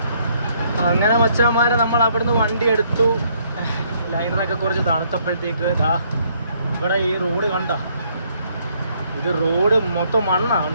അങ്ങനെ മച്ചാന്മാരെ നമ്മൾ അവിടുന്ന് വണ്ടി എടുത്തു. ലൈനറൊക്കെ കുറച്ച് തണുത്തപ്പോഴത്തേക്ക് ഇതാ ഇവിടെ ഈ റോഡ് കണ്ട, ഇത് റോഡ് മൊത്തം മണ്ണാണ്.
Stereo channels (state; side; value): inverted; both; correlation -0.68